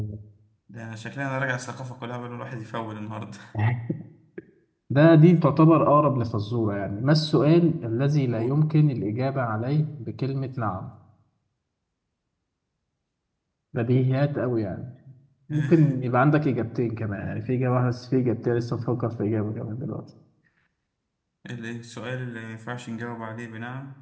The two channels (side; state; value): both; identical; correlation 1.00